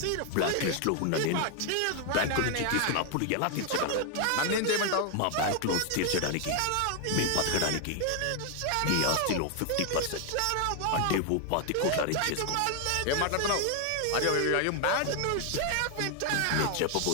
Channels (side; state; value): both; different; correlation 0.00